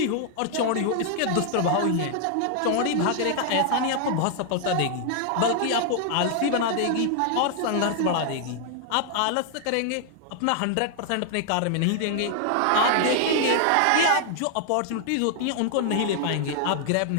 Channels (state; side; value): different; both; correlation 0.00